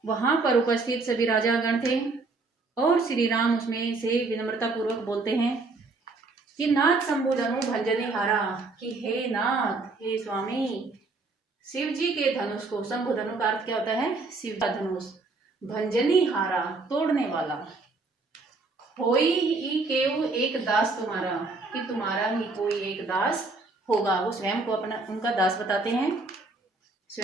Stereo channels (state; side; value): quieter; left; 3.6 dB